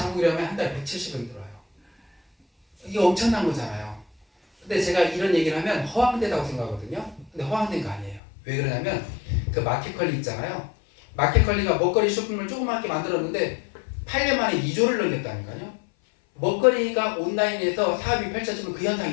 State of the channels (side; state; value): right; drops out; at 8.2 s